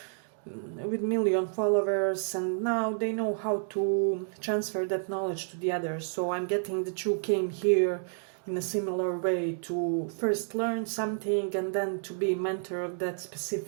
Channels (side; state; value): left; silent; digital silence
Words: with million followers, and now they know how to transfer that knowledge to the others. So I'm getting that you came here in a similar way to first learn something and then to be mentor of that